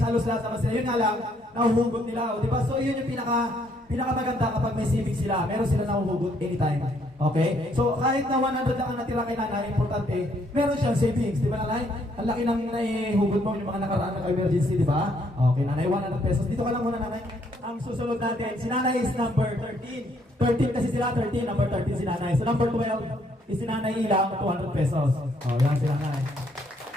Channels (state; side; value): normal; both; correlation 0.69